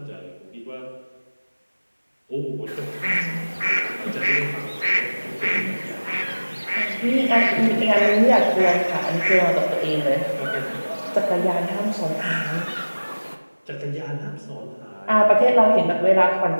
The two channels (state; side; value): inverted; both; correlation -1.00